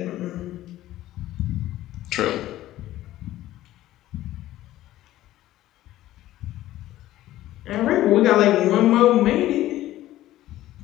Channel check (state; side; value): quieter; right; 14.7 dB